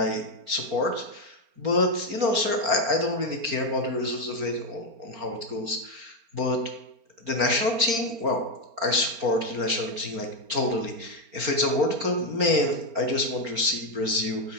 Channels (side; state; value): left; late; 4.4 ms